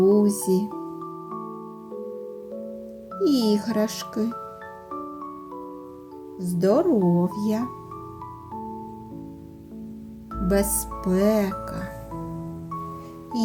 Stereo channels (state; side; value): identical; both; correlation 1.00